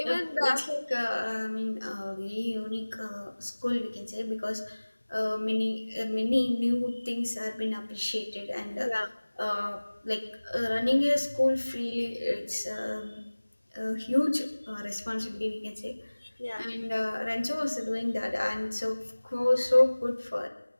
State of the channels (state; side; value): inverted; both; correlation -1.00